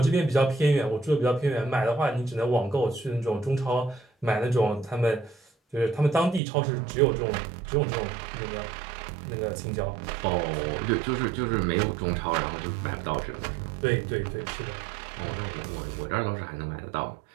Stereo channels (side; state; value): left; drops out; at 6.4 s